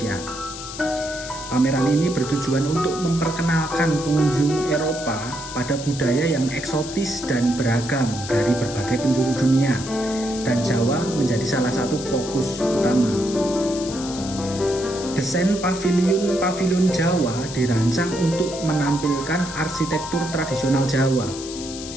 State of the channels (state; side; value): noise; left; hiss, 11 dB below the sound